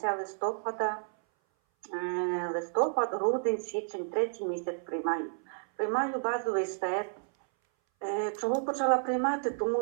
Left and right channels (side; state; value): left; silent; 57 dB below the other